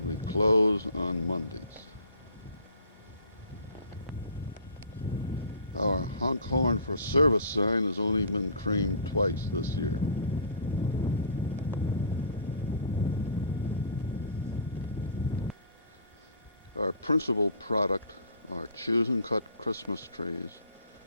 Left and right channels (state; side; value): inverted; both; correlation -0.46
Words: we close on Mondays. Our honk horn for service sign has only been creamed twice this year. Our principal product are choose and cut Christmas trees,